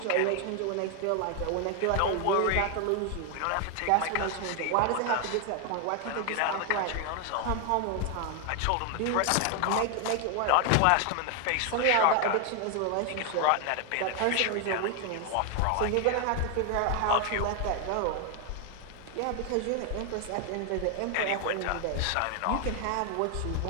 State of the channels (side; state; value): both; different; correlation 0.00